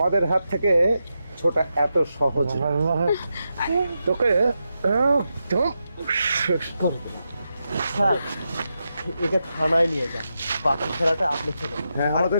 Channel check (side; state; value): both; inverted; correlation -0.87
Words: হাত থেকে ছোটা এত সহজ না। তোকে একদম শেষ করে দেবো। স্যার, একে থানায় নিয়ে যান, বাকি খেলাটা আপনি খেলেন। হ্যাঁ, আর আমাদের